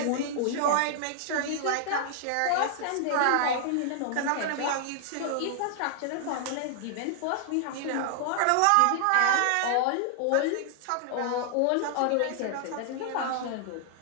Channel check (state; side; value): different; both; correlation -0.01